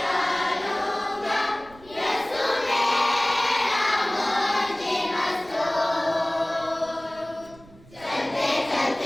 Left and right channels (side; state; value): right; noise; rumble, 24 dB below the sound